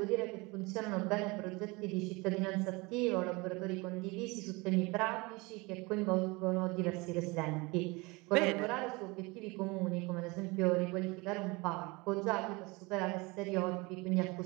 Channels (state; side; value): quieter; left; 25.3 dB